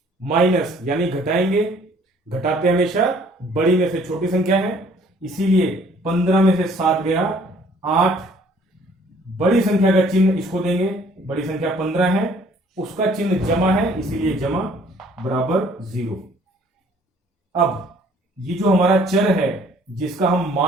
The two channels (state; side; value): normal; both; correlation 0.58